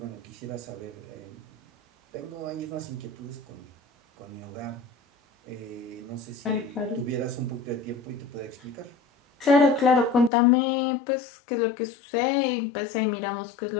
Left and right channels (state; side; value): drops out; right; at 10.3 s